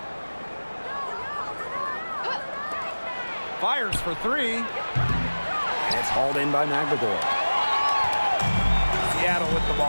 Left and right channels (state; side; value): inverted; both; correlation -1.00